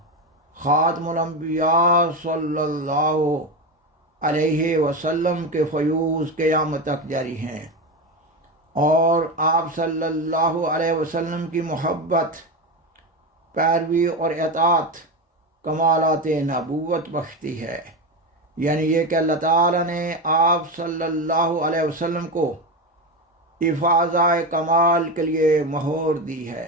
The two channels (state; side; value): normal; both; correlation 0.17